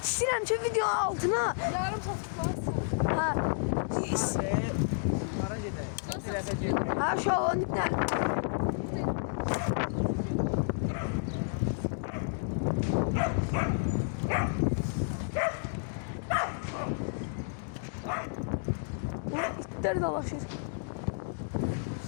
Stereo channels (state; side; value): silent; right; digital silence